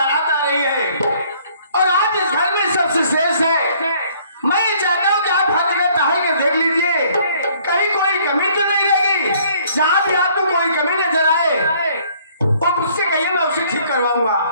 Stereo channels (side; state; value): both; inverted; correlation -0.61